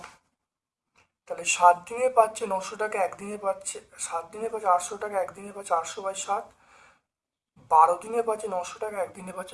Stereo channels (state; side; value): identical; both; correlation 1.00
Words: তাহলে 7 দিনে পাচ্ছে 900 টাকা, একদিনে পাচ্ছে 7 দিনে পাচ্ছে 800 টাকা, একদিনে পাচ্ছে 800/7, 12 দিনে পাচ্ছে 900 টাকা, একদিনে